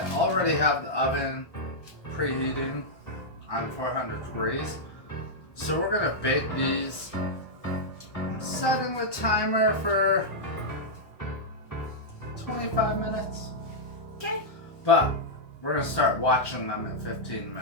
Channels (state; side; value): late; right; 1.1 ms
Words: already have the oven preheating on 400 degrees. So we're gonna bake these. I'm setting the timer for 25 minutes. Okay. But we're gonna start watching them at 15